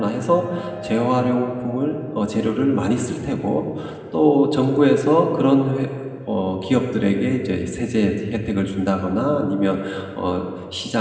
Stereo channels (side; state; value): both; identical; correlation 1.00